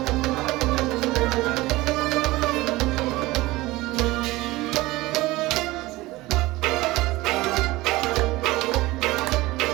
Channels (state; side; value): quieter; left; 19.7 dB